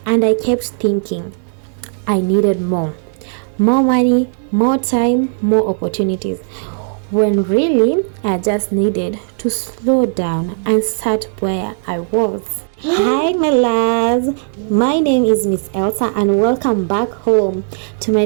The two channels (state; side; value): silent; left; 69 dB below the other